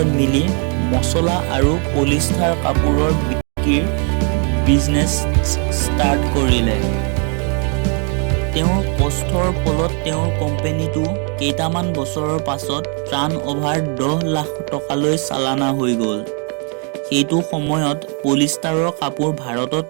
মিলি মছলা আৰু পলিষ্টাৰ কাপোৰৰ বিক্ৰীৰ বিজনেছ ষ্টাৰ্ট কৰিলে। তেওঁৰ কষ্টৰ ফলত তেওঁৰ কোম্পানীটো কেইটামান বছৰৰ পাছত টাৰ্ণঅভাৰ 10 লাখ টকালৈ চালানা হৈ গ'ল। সেইটো সময়ত পলিষ্টাৰৰ কাপোৰ ভাৰতত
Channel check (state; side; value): quieter; left; 38.8 dB